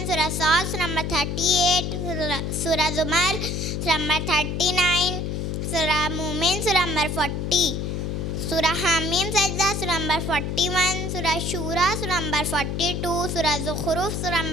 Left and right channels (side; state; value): left; noise; hum, 2 dB below the sound